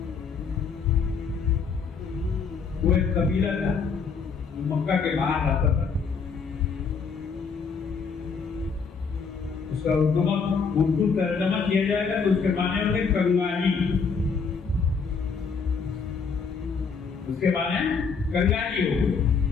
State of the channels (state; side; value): quieter; right; 5.4 dB